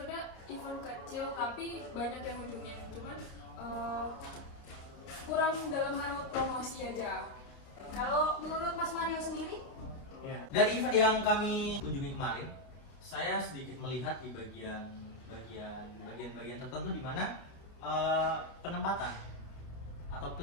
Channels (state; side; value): late; right; 29 ms